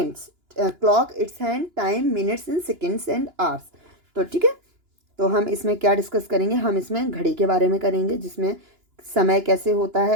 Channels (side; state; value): left; late; 2.9 ms